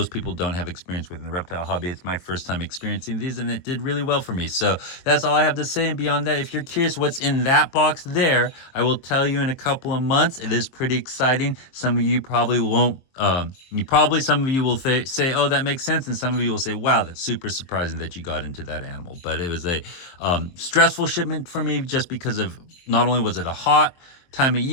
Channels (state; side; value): late; right; 23 ms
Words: people don't have experience with in the reptile hobby. It's my first time experiencing these, and it did really well for me. So that's all I have to say. And beyond that, if you're curious what's in that box there, I will tell you in a couple of months. It is pretty exciting. Some of you probably won't. Some of you will say, oh, that makes sense. And some of you will say, wow, that's super surprising that you got into that animal. But it was a stressful shipment for me, just because of, not only was it a hot time of